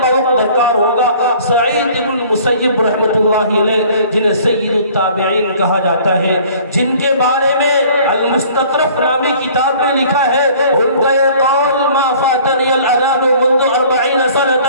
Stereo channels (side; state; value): both; inverted; correlation -0.52